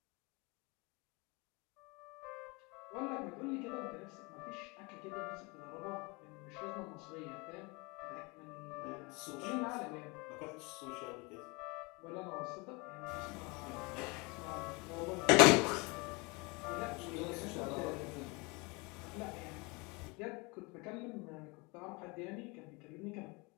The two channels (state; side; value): quieter; right; 27.7 dB